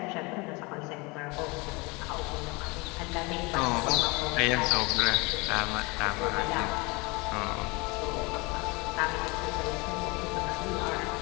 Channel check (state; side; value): quieter; right; 26.5 dB